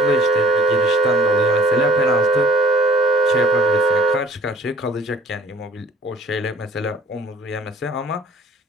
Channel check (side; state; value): both; normal; correlation 0.53